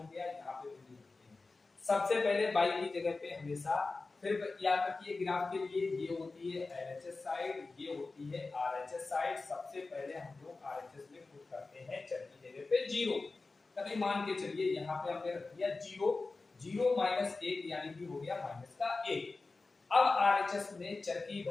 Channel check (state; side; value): quieter; right; 3.7 dB